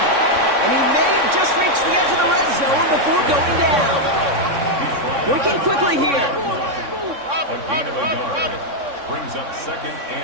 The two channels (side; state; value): left; late; 3.6 ms